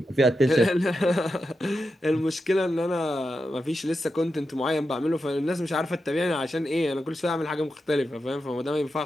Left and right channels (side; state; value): both; normal; correlation 0.89